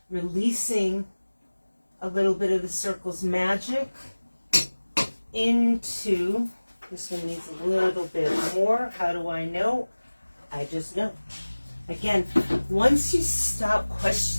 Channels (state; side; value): inverted; both; correlation -1.00